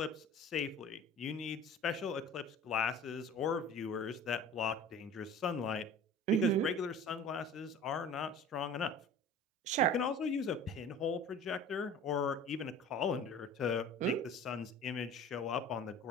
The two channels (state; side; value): normal; both; correlation 0.41